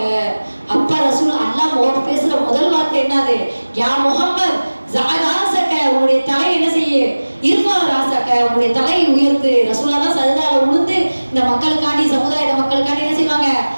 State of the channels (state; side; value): inverted; both; correlation -1.00